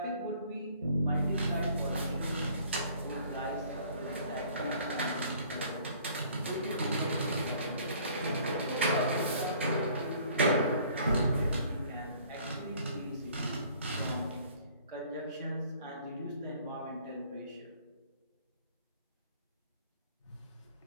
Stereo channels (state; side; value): inverted; both; correlation -0.55